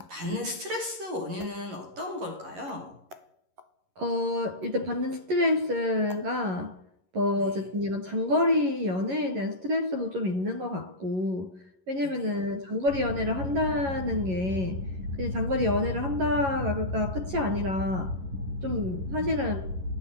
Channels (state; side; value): late; left; 11 ms